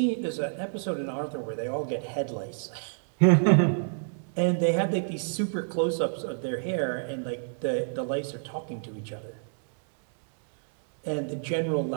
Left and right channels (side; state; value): left; silent; digital silence